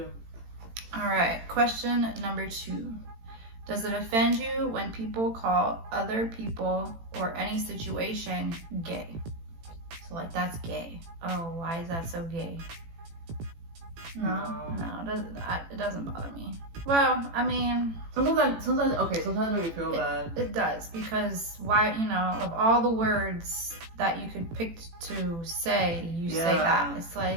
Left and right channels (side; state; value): left; late; 18 ms